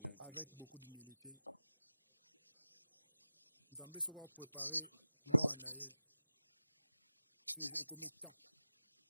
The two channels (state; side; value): inverted; both; correlation -0.95